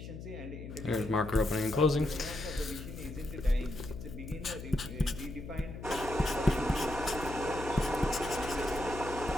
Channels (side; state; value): left; noise; hum, 10 dB below the sound